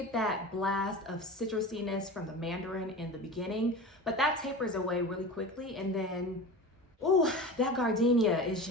that blast of citrusiness from the mandarin in the beginning, but that tapers away really quickly. And then, ooh, that gardenia is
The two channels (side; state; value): both; normal; correlation 0.31